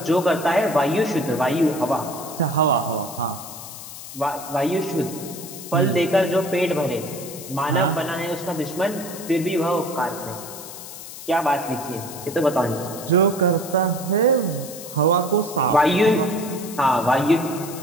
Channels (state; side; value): noise; left; hiss, 12 dB below the sound